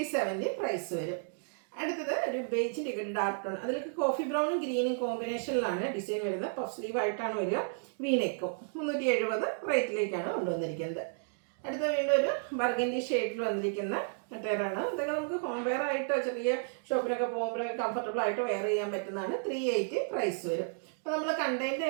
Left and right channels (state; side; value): silent; left; digital silence